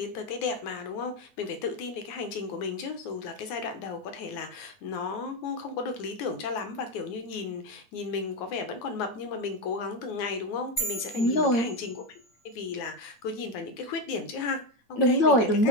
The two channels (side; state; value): right; late; 9.5 ms